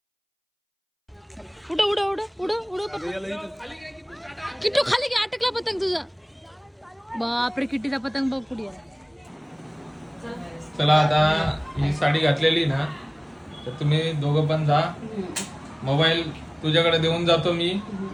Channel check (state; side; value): identical; both; correlation 1.00